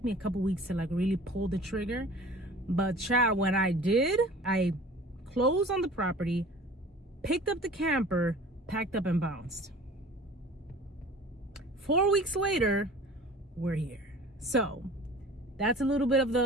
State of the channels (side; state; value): both; normal; correlation 0.44